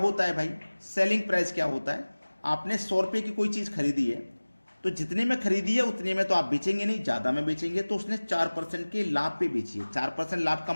है भाई? सेलिंग प्राइस क्या होता है? आपने 100 रुपये की कोई चीज़ खरीदी है, तो जितने में खरीदी है उतने में तो आप बेचेंगे नहीं, ज़्यादा में बेचेंगे। तो उसने 4% के लाभ पे बेची है, 4% लाभ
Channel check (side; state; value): both; inverted; correlation -1.00